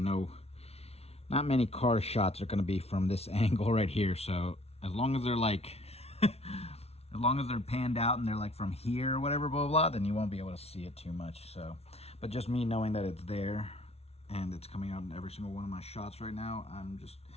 many car shots are going to be from this angle right here. So as long as they're like as long as they're panned out and they're like from here or whatever, blah, blah, blah, then you won't be able to see it too much. So, but just me knowing that it's there and it's coming out in every single one of my shots right now, I'm just,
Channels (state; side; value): late; right; 0.30 ms